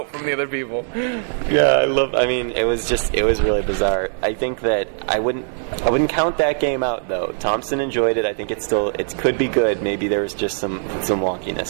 from the other people. Yeah, it was really bizarre. I think that I wouldn't count that game out though. Thompson enjoyed it. I think it could be good. Maybe there was just some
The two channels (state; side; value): silent; left; 60 dB below the other